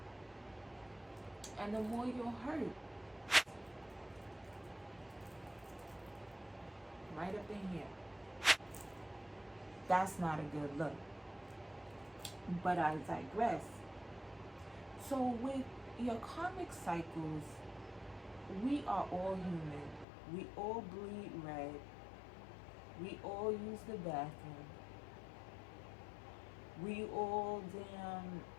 and the more you'll hurt. Right up in here. That's not a good look. But I digress. So with your karmic cycles, we are all human. We all bleed red. We all use the bathroom. We all damn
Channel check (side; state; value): right; drops out; at 20.1 s